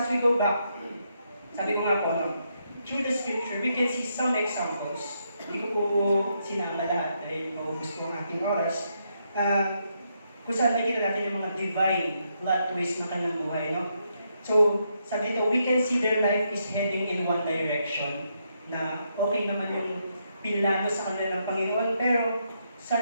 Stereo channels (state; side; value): inverted; both; correlation -0.79